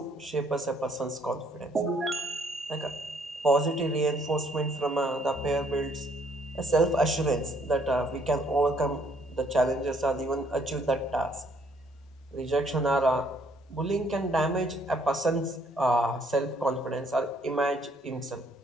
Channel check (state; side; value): normal; both; correlation 0.66